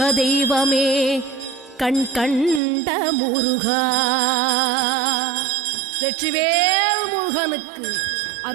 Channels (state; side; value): drops out; left; at 2.6 s